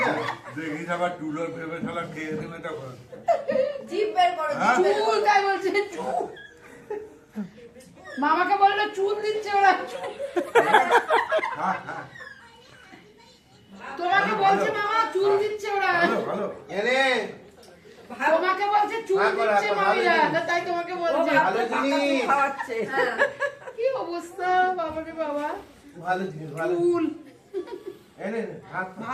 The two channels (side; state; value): both; identical; correlation 1.00